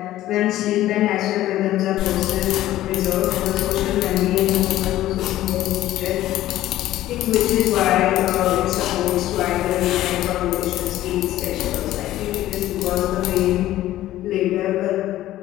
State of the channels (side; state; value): right; quieter; 14.4 dB